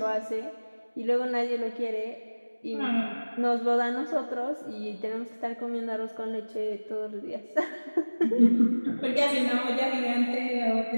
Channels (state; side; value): inverted; both; correlation -1.00